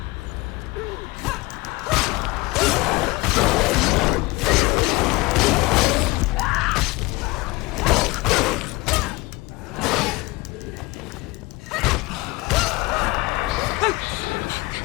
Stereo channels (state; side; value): quieter; right; 22.6 dB